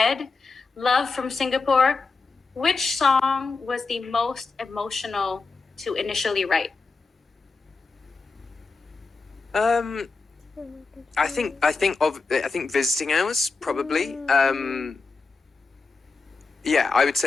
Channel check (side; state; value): right; quieter; 4.2 dB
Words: Love from Singapore. Which song was the most emotional to initially write?" I think Visiting Hours probably. Yeah, I would